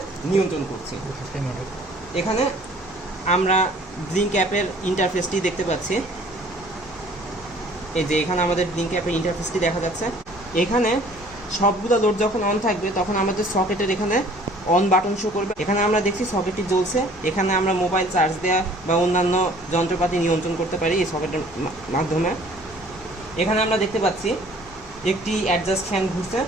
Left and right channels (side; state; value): both; normal; correlation 0.53